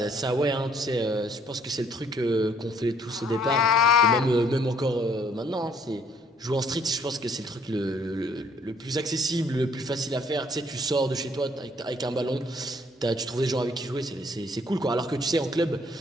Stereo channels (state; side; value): normal; both; correlation 0.63